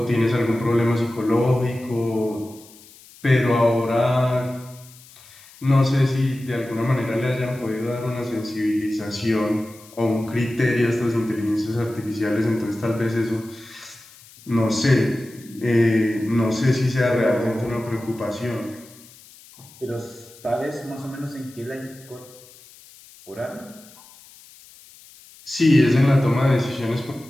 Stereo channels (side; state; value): left; noise; hiss, 23 dB below the sound